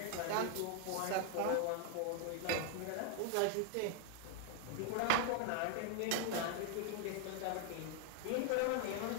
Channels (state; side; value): different; both; correlation 0.00